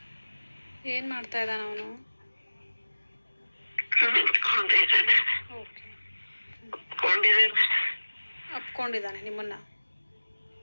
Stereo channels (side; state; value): both; inverted; correlation -1.00